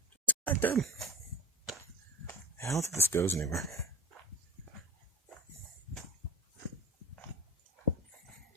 Disconnected. I don't think this goes anywhere.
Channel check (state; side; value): normal; both; correlation 0.32